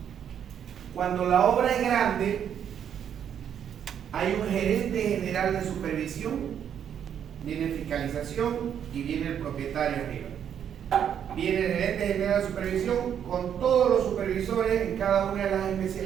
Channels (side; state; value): left; quieter; 8.8 dB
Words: Cuando la obra es grande, hay un gerente general de supervisión, viene fiscalización y viene el propietario arriba. Viene el gerente general de supervisión con todos los supervisores en cada una de las